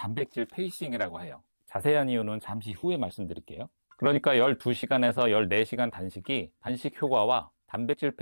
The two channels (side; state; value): both; inverted; correlation -1.00